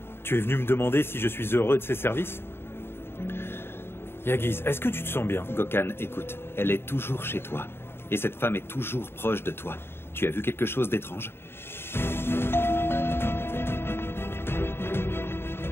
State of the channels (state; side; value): late; right; 0.11 ms